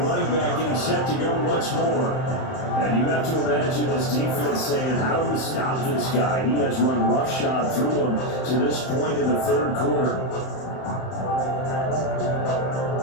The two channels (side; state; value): right; late; 31 ms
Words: back getting set to go once more. And you have to imagine this defense saying, how do we stop this guy? He has run roughshod through him to this point in the third quarter.